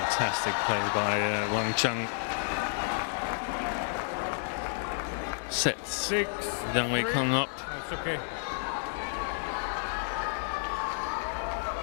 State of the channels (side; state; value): right; silent; digital silence